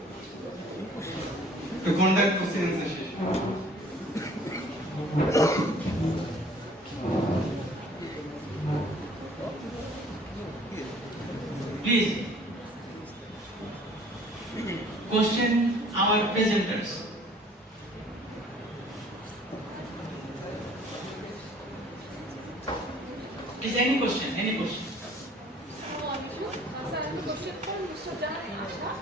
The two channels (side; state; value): both; normal; correlation 0.54